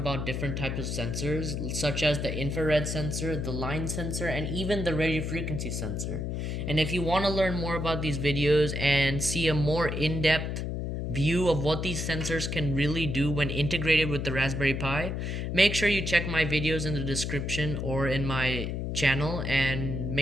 different types of sensors, such as the infrared sensor, the line sensor, and even the radio frequency sensor. And if you want to learn more about these videos and see a more in-depth view of what these sensors can really do when integrated with the Raspberry Pi, make sure you check my videos in the description or in my channel and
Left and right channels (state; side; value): noise; left; hum, 3 dB below the sound